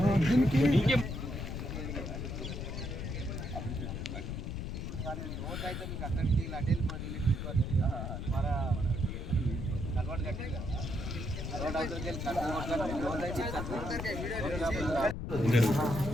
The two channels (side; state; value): left; noise; rumble, 5 dB below the sound